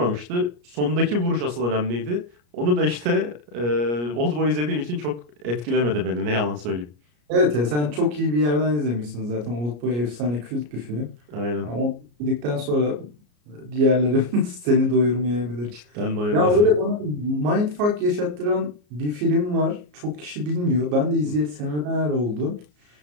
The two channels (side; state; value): left; late; 34 ms